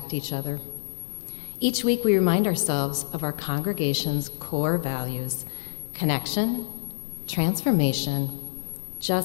each other. Each week, we remind ourselves of our congregation's core values: connection, transformation,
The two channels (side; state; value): right; silent; 55 dB below the other